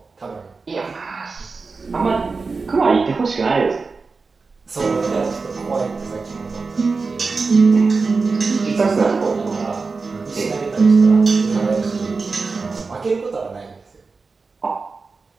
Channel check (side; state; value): left; quieter; 4.3 dB